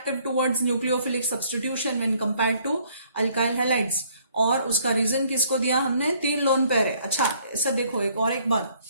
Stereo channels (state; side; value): inverted; both; correlation -0.63